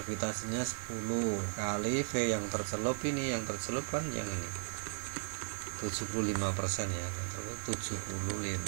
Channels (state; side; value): silent; left; 54 dB below the other